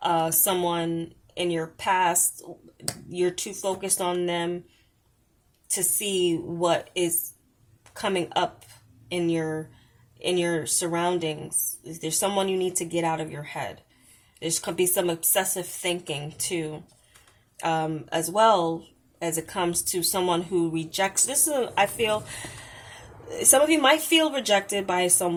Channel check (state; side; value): identical; both; correlation 1.00